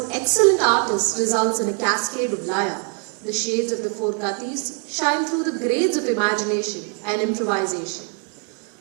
excellent artists results in a cascade of laya. The shades of the four gatis shine through the grades of imagination and improvisation.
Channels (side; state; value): left; quieter; 38.6 dB